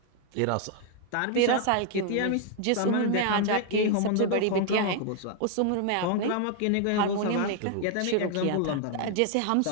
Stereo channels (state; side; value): different; both; correlation 0.00